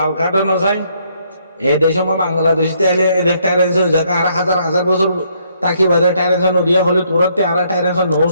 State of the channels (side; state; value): both; inverted; correlation -0.70